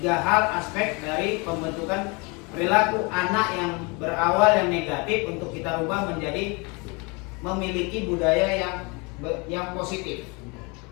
hal aspek dari pembentukan perilaku anak yang berawal yang negatif untuk kita rubah menjadi memiliki budaya yang positif.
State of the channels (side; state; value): right; quieter; 29.5 dB